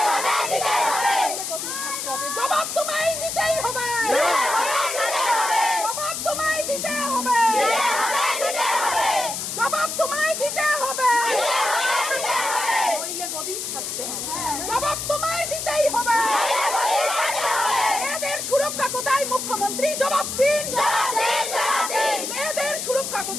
জবাব তোমায় দিতেই হবে, জবাব তোমায় দিতে হবে, জবাব তোমায় দিতে হবে, নইলে গদি ছাড়তে হবে, জবাব তোমায় দিতেই হবে। মেয়েদের সুরক্ষা কোথায় মুখ্যমন্ত্রী? জবাব দিন, মেয়েদের সুরক্ষা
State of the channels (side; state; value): left; noise; hiss, 4 dB below the sound